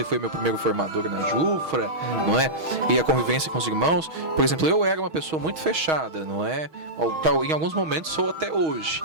foi meu primeiro formador na Jufra, não é? E a convivência com os irmãos, por exemplo, eu era uma pessoa muito fechada, não é? Em alguns momentos sou até hoje,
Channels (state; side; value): late; left; 6.3 ms